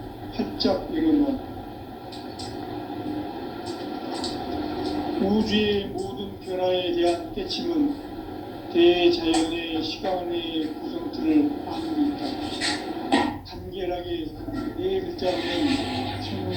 활짝 열어놓았다. 우주의 모든 변화에 대한 깨침은 대자연의 시간의 구성틀을 아무리 있다. 간결하게 네 글자로는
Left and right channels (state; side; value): identical; both; correlation 1.00